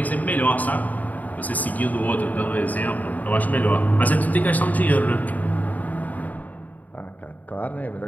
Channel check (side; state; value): right; late; 0.078 ms